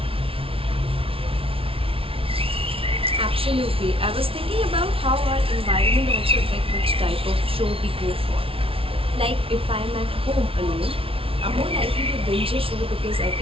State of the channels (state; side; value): late; left; 0.26 ms